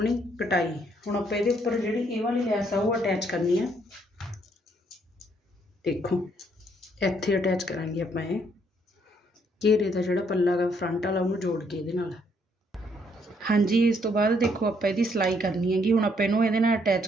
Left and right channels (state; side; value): normal; both; correlation 0.70